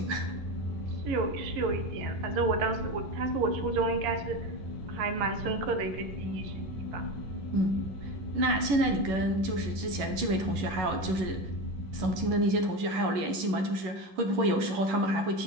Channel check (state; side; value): late; left; 11 ms